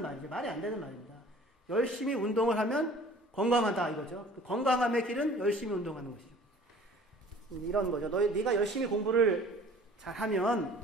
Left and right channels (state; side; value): normal; both; correlation 0.48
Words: 말이죠. 말이 안 되는 말입니다. 열심히 운동을 하면 건강하다 이거죠. 건강함의 길은 열심히 운동하는 것이죠. 이런 거죠. 네가 열심히 공부를